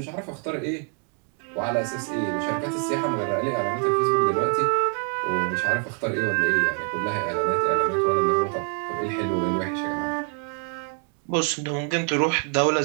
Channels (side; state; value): left; quieter; 38.8 dB